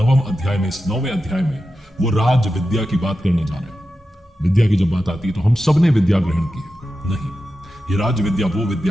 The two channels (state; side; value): normal; both; correlation 0.91